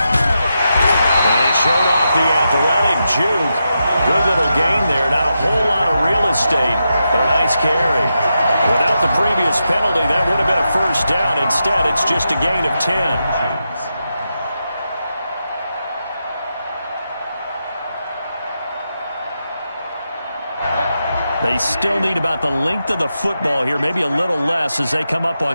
he showed off the athletic juke. Good little gain there. Not a whole lot of real estate, but a nice carry. Without the previous penalty, that would have been a first down. Instead, it's just a gain of 10. They still need about the length of the football here, maybe a little less as they come up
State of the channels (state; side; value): inverted; both; correlation -0.87